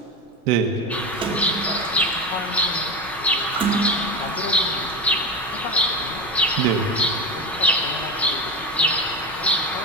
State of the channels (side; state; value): both; normal; correlation 0.21